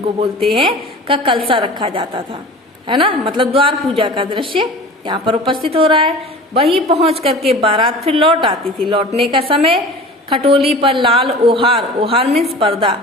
बोलते हैं, का कलसा रखा जाता था, है ना, मतलब द्वार पूजा का दृश्य यहाँ पर उपस्थित हो रहा है। वहीं पहुंच करके बारात फिर लौट आती थी। लौटने का समय खटोली पर लाल ओहार, ओहार मीन्स पर्दा,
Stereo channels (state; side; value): normal; both; correlation 0.39